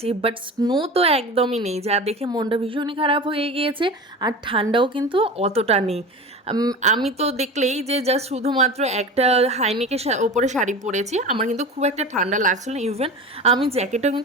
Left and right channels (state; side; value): normal; both; correlation 0.32